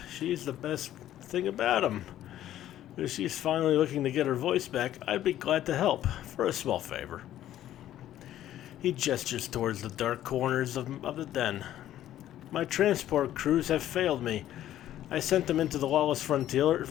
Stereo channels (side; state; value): right; quieter; 12.5 dB